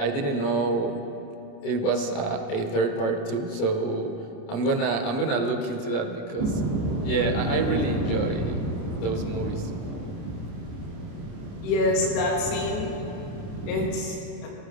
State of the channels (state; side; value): late; right; 29 ms